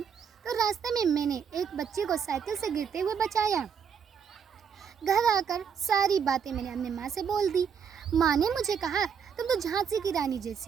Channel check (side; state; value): left; quieter; 7.1 dB